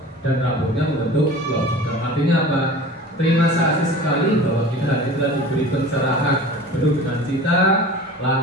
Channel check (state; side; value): normal; both; correlation 0.39